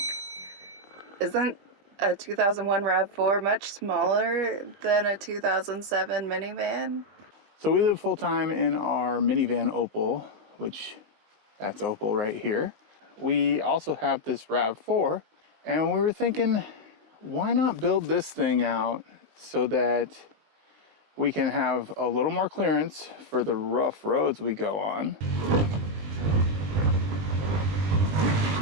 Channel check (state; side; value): late; left; 20 ms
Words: isn't a 2001 RAV4 much smaller than a 2007 minivan? So we live full-time in our minivan Opal, which that's Opal right here. We also have this RAV4, and we were thinking, why not build this thing out so that we can have a little more clearance for the rough roads we go on.